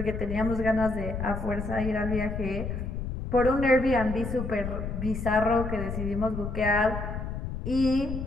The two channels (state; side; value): noise; left; rumble, 5 dB below the sound